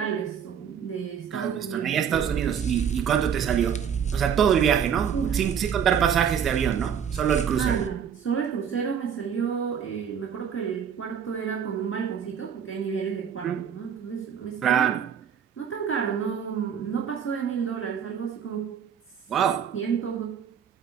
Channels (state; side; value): quieter; left; 7.9 dB